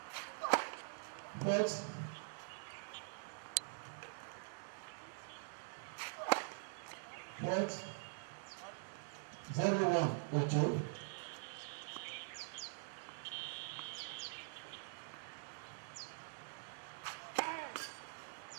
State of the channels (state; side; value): silent; left; digital silence